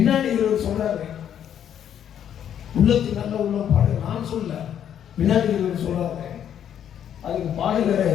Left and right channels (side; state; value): right; quieter; 9.6 dB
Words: இவர் சொல்றாரு, உள்ளத்துக்கு நல்ல உள்ளம் பாடு. நான் சொல்ல, பின்னாடி இவர் சொல்றாரு. அதுக்கு பாடுகிற